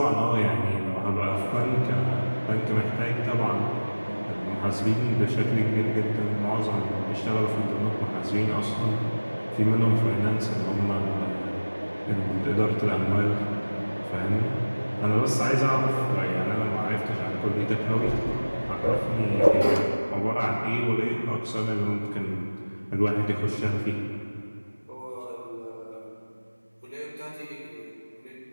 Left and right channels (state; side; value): inverted; both; correlation -1.00